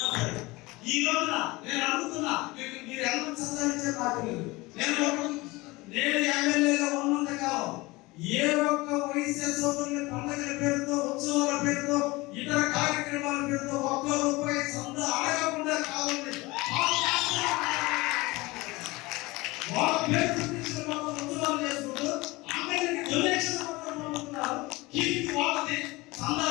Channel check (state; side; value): quieter; right; 22.1 dB